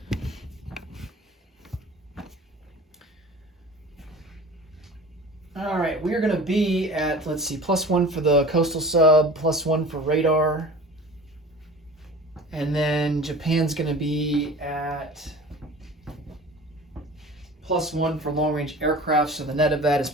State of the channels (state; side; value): normal; both; correlation 0.40